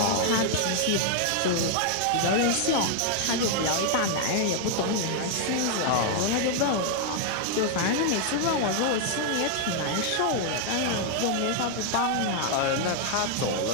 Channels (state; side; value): different; both; correlation 0.00